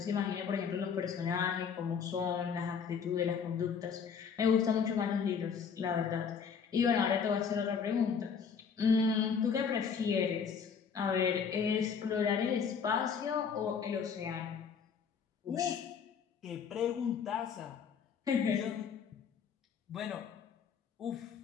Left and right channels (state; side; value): quieter; right; 6.5 dB